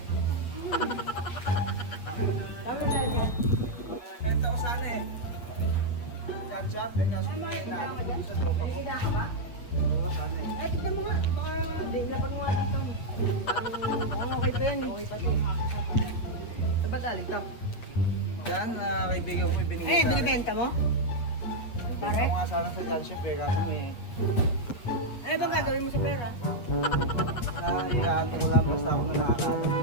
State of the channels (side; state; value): right; late; 8.3 ms